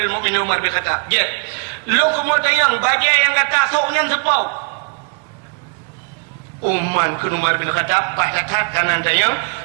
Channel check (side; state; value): left; quieter; 38.6 dB